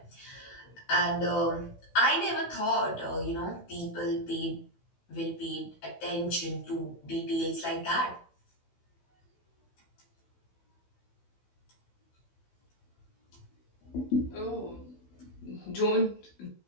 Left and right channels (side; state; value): right; late; 16 ms